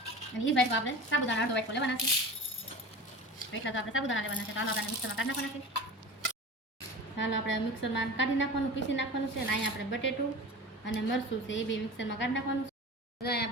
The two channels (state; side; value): normal; both; correlation 0.34